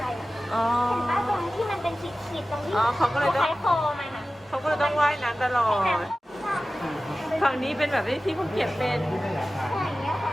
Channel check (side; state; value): both; normal; correlation 0.96